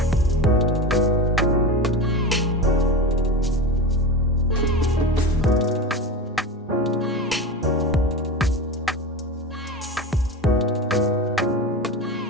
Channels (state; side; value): normal; both; correlation 0.25